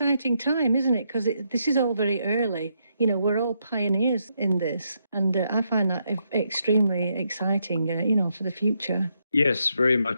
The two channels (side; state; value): both; inverted; correlation -0.79